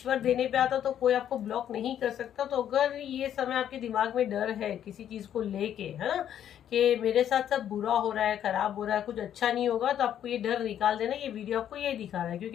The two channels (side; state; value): right; quieter; 10.2 dB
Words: देने पे आता तो कोई आपको ब्लॉक नहीं कर सकता। तो अगर ये समय आपके दिमाग में डर है किसी चीज को लेके, है ना, कि मेरे साथ सब बुरा हो रहा है, खराब हो रहा है, कुछ अच्छा नहीं होगा, तो आपको ये डर निकाल देना। ये वीडियो आपको ये दिखा रहा है,